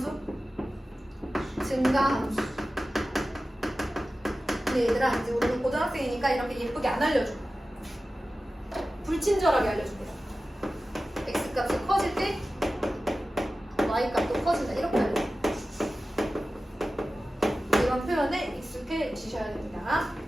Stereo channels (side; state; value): both; normal; correlation 0.95